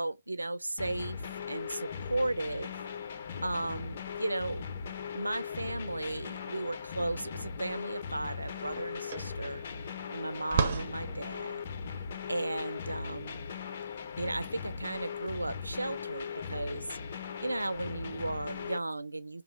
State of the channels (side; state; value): both; inverted; correlation -0.84